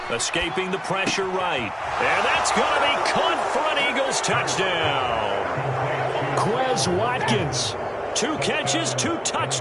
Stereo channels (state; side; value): identical; both; correlation 1.00